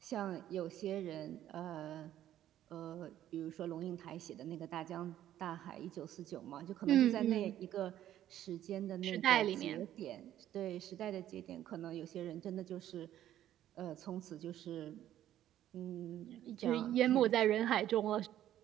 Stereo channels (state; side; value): quieter; left; 12.1 dB